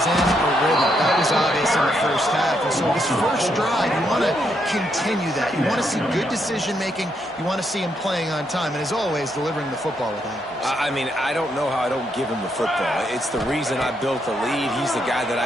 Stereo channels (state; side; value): normal; both; correlation 0.77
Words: in a rhythm. That was obvious in the first half. And so this first drive, you want to continue that. You want to see good decision-making. You want to see him playing on time. And as always, delivering the football with accuracy. I mean, I don't know how I don't give him the football. It's the reason I built the lead. He's the guy that